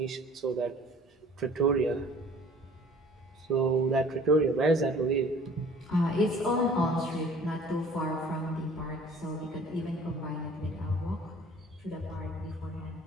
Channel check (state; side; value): normal; both; correlation 0.50